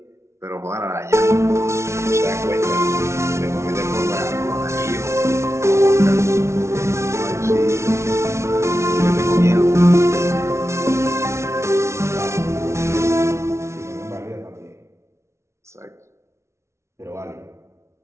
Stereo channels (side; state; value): left; late; 0.13 ms